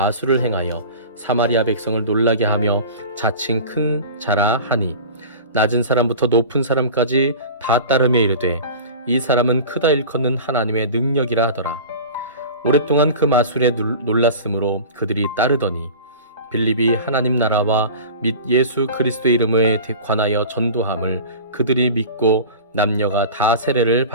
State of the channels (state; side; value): inverted; both; correlation -0.36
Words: 행하여 사마리아 백성을 놀라게 하며 자칭 큰 자라 하니 낮은 사람부터 높은 사람까지 다 따르며 이르되 이 사람은 크다 일컫는 하나님의 능력이라 하더라. 오랫동안 그 마술에 놀랐으므로 그들이 따르더니 빌립이 하나님 나라와 및 예수 그리스도의 이름에 관하여 전도함을 그들이 믿고 남녀가 다 세례를